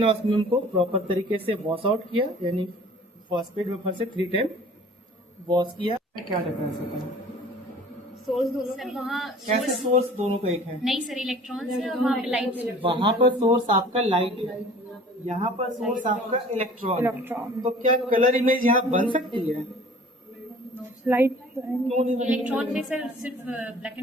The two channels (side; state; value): both; normal; correlation 0.48